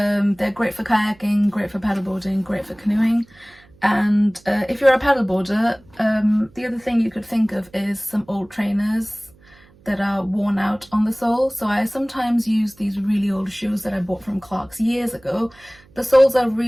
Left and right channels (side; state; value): right; noise; hum, 28 dB below the sound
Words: great for kayaking, great for paddleboarding, great for canoeing. And if you're a paddleboarder, the other thing you could think of is some old trainers that are worn out on the sole. So I sometimes use these really old shoes that I bought from Clark's years ago. The soles are